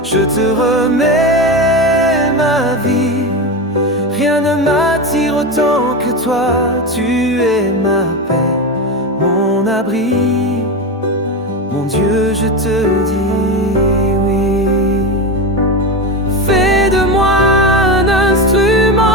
Je te remets ma vie, rien ne m'attire autant que toi. Tu es ma paix, mon abri. Mon Dieu, je te dis oui. Fais de moi un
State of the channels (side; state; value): both; normal; correlation 0.19